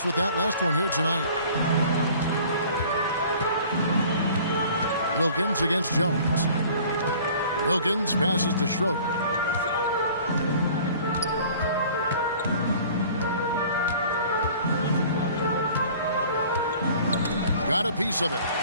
with that last one here tonight. Wilkins against Jones. Wilkins passes to Schroeder. Got a piece of it.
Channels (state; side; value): inverted; both; correlation -0.49